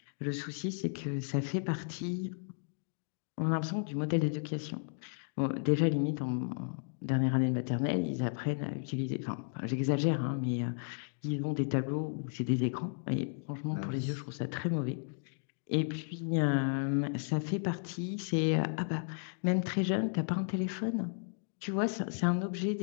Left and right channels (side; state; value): right; silent; digital silence